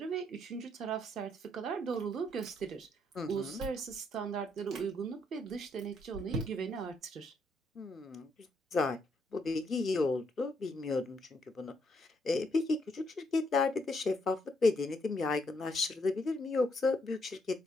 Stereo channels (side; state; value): both; normal; correlation 0.74